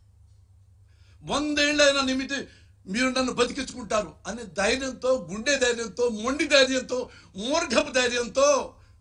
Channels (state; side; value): identical; both; correlation 1.00